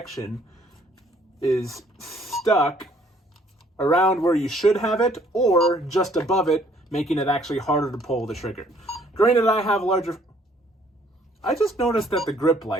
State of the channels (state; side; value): normal; both; correlation 0.62